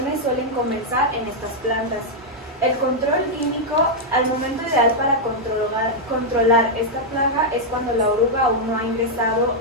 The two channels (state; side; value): normal; both; correlation -0.03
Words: suelen comenzar en estas plantas. El control químico, al momento ideal para controlar esta plaga es cuando la oruga aún no ha ingresado